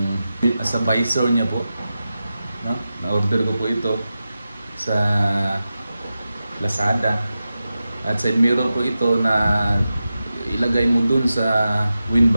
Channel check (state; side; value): inverted; both; correlation -0.92